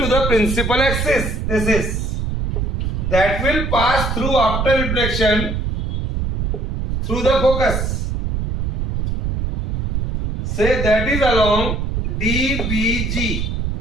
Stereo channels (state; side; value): noise; right; rumble, 1 dB below the sound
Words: the principal axis. This is. That will pass through after reflection through the focus. Say that is along DBG.